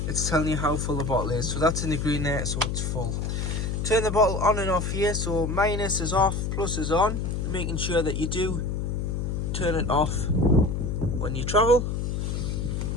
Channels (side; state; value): left; noise; hum, 1 dB below the sound